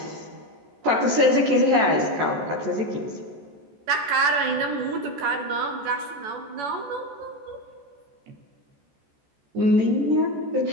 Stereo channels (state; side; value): late; left; 14 ms